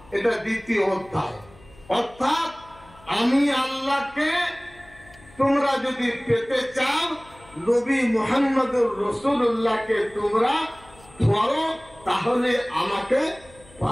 এটা দ্বিতীয় অধ্যায়। অর্থাৎ আমি আল্লাহকে তোমরা যদি পেতে চাও, নবী মুহাম্মাদুর রাসূলুল্লাহকে তোমরা ধরো, তাহলে আমাকে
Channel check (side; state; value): left; noise; hum, 25 dB below the sound